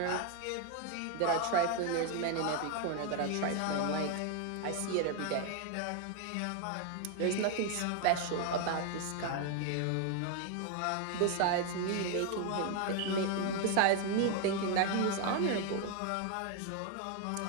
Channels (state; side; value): different; both; correlation 0.01